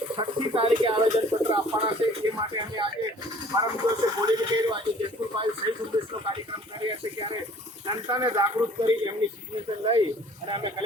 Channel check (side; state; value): both; normal; correlation 0.52